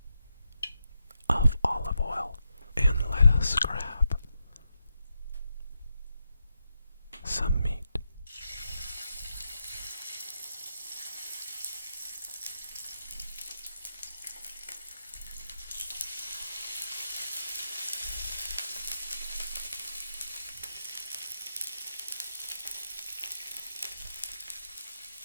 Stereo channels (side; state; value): both; inverted; correlation -0.86